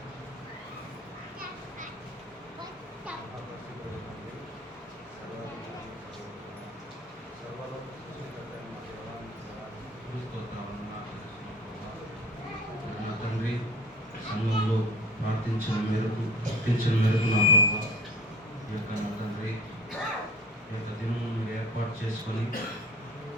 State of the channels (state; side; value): normal; both; correlation 0.41